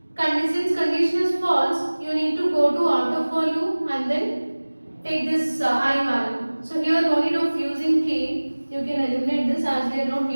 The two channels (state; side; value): inverted; both; correlation -1.00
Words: since condition is false, you need to go to out of for loop and then take this I value. So here no need of using k, you can eliminate this as we are not